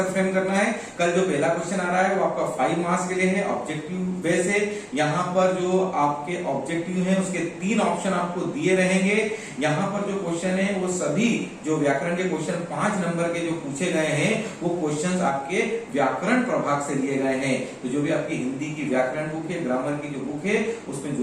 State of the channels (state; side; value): identical; both; correlation 1.00